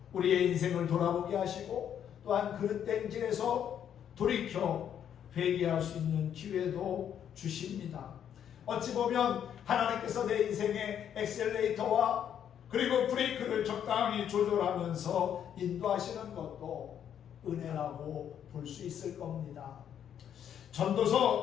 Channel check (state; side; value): quieter; right; 9.2 dB